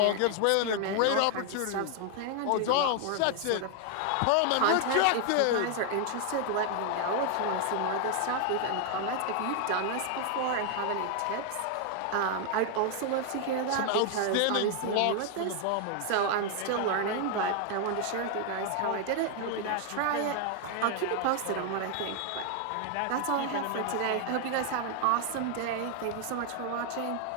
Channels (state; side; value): different; both; correlation 0.00